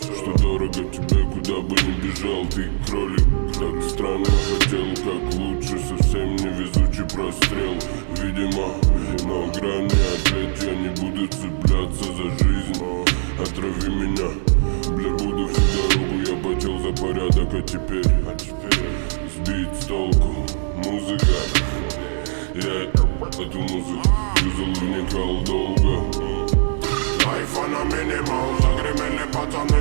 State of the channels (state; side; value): silent; left; digital silence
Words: что дорого тебе, куда бы ни бежал. Ты кролик, так странно хотел, как лучше. Совсем невезучий прострел, видимо, на грани. Ответь, я не буду цепляться за жизнь. Отрави меня, бля, буду всю дорогу. Я потел за порядок, а теперь сбить с толку. Музыка, я эту музыку юзал, вникал долго. Айфон на минимал, загремели пацаны,